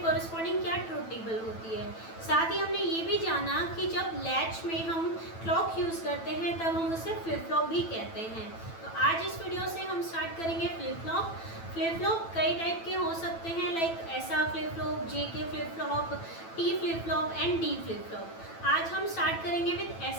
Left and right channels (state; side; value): late; right; 9.1 ms